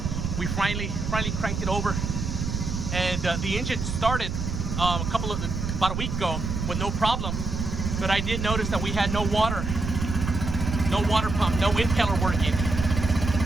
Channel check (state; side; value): noise; right; rumble, 3 dB below the sound